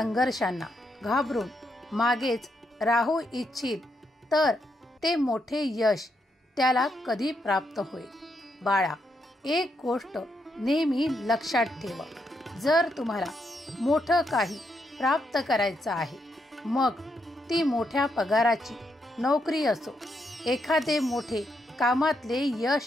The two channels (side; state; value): both; normal; correlation 0.80